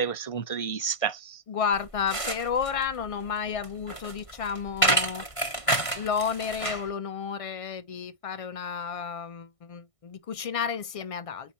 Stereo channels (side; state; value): right; late; 1.6 ms